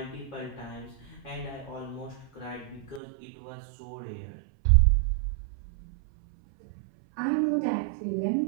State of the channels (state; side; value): drops out; left; at 3.0 s